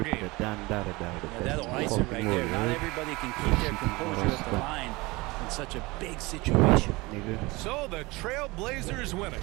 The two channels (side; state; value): left; quieter; 23.1 dB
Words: game. Yeah, that'll ice it right there. Not everybody can keep their composure at the line in such a big situation. So the Trailblazers winning.